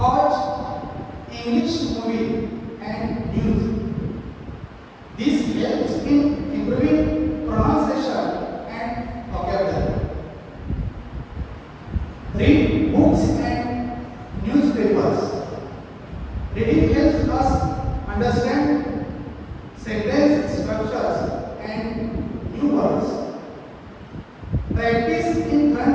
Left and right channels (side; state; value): both; identical; correlation 1.00